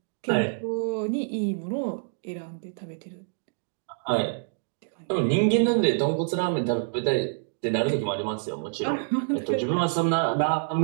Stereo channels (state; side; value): silent; left; digital silence